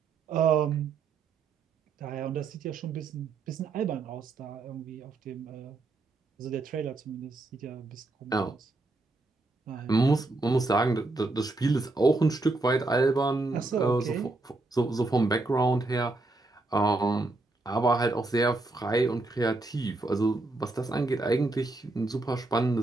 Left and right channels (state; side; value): quieter; left; 3.3 dB